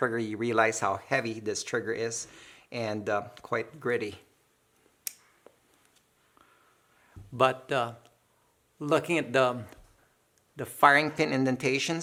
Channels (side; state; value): both; identical; correlation 1.00